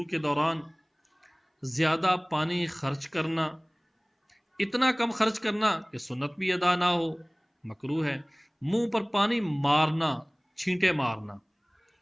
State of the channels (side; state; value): both; identical; correlation 1.00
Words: کے دوران، زیادہ پانی خرچ کرنا، اتنا کم خرچ کرنا کہ سنت بھی ادا نہ ہو مکروہ ہے۔ منہ پر پانی مارنا، چھینٹے مارنا